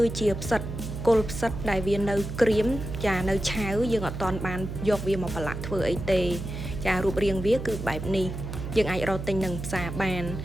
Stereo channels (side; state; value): right; noise; hum, 7 dB below the sound